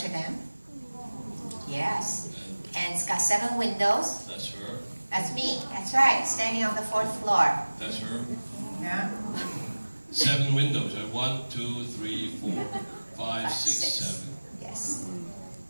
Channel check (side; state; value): both; inverted; correlation -1.00